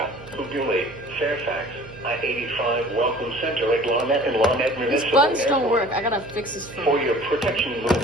Ugule, Fairfax, I-85 Welcome Center at Lawnet and Lawnet These Municipal buttons don't Airport. work. I gotta fix this For phone. your protection, move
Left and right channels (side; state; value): right; noise; hum, 19 dB below the sound